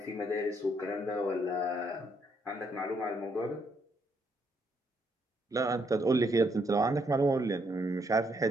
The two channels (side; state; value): both; normal; correlation 0.73